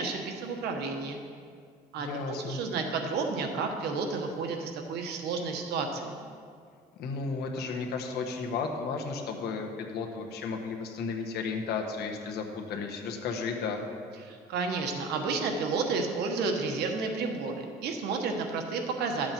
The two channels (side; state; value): both; normal; correlation 0.34